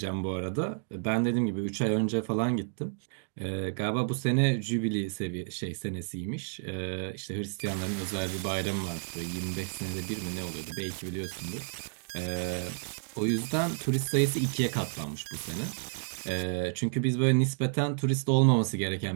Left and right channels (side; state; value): left; silent; digital silence